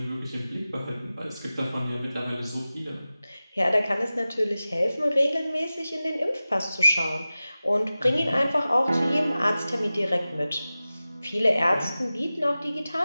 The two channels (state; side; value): inverted; both; correlation -0.96